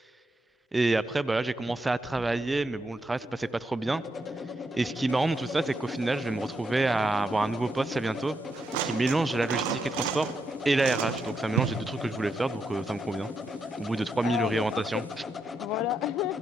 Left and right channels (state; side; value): normal; both; correlation 0.82